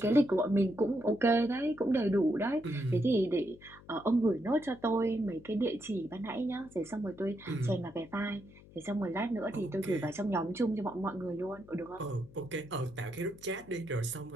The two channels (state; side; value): noise; left; hum, 22 dB below the sound